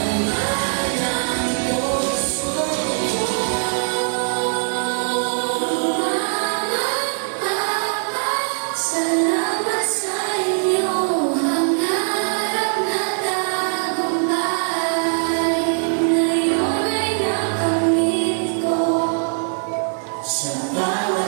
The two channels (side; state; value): left; silent; digital silence